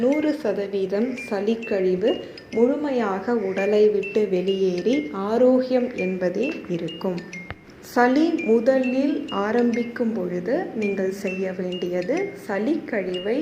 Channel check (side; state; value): both; identical; correlation 1.00